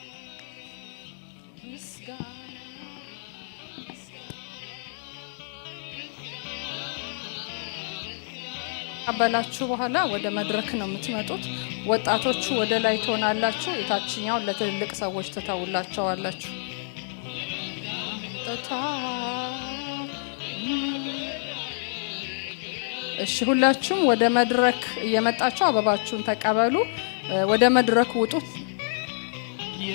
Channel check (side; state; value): right; silent; digital silence